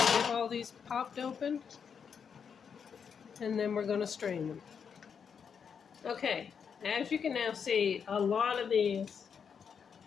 all these popped open, and then we're going to strain them. Okay, as you can now see, a lot of these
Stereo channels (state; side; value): quieter; right; 6.8 dB